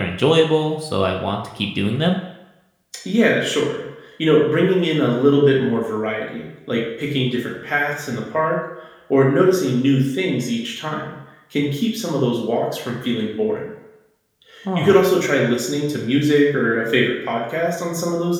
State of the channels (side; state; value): both; identical; correlation 1.00